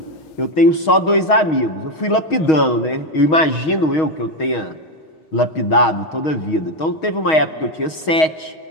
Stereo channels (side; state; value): right; late; 6.3 ms